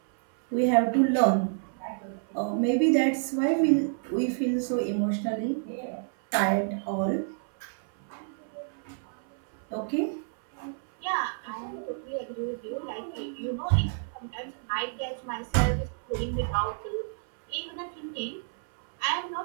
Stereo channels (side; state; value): left; silent; 59 dB below the other